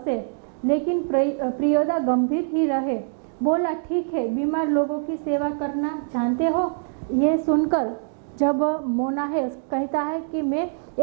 लेकिन प्रियोदा गंभीर ही रहे। बोला ठीक है, बीमार लोगों की सेवा करना जानते हो? ये सुनकर जब मोना है कहता है कि मैं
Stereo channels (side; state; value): left; silent; digital silence